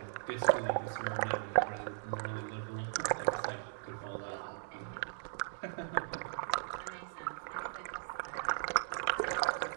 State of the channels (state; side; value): silent; left; digital silence